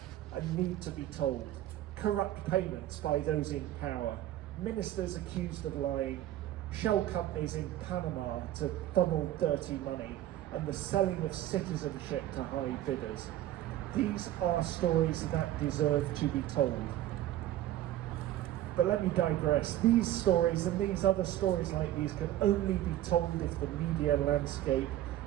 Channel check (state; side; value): quieter; left; 13.5 dB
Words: and need to be told. Corrupt payments by those in power, ministers accused of lying, shell companies in Panama to funnel dirty money, and the selling of citizenship to high bidders. These are stories that deserve to be told. But let me digress. These stories and these other stories like these can only be told if the media landscape